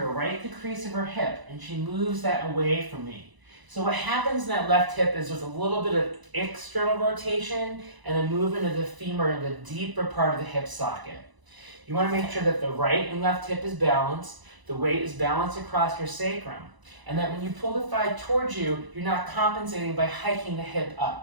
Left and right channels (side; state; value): left; late; 1.0 ms